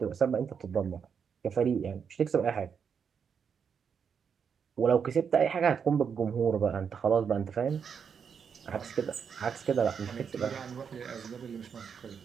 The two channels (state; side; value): quieter; left; 6.8 dB